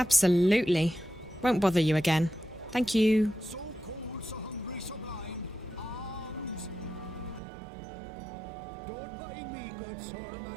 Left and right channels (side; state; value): left; drops out; at 7.4 s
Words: Won't bother you again. Thank you. So cold, so hungry, so blind. Arms. Don't mind me, good sir,